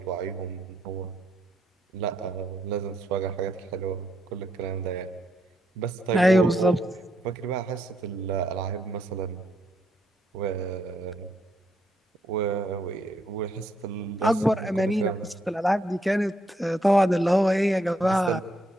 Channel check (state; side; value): normal; both; correlation 0.75